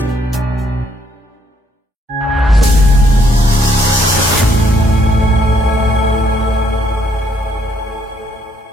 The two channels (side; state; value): both; normal; correlation 0.69